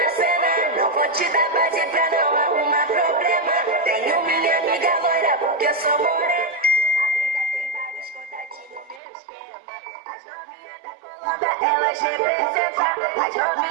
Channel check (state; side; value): drops out; left; at 9.0 s